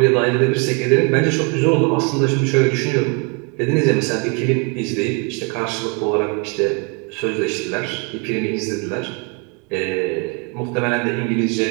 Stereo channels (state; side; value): quieter; left; 34.3 dB